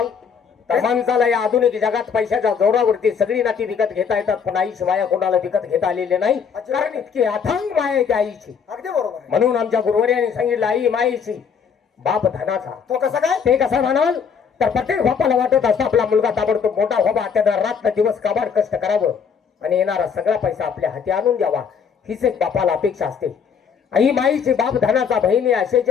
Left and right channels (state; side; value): quieter; right; 6.6 dB